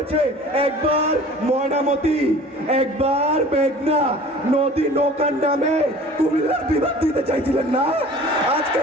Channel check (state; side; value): normal; both; correlation 0.45